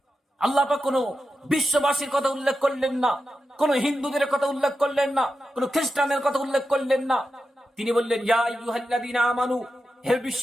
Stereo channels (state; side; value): normal; both; correlation 0.90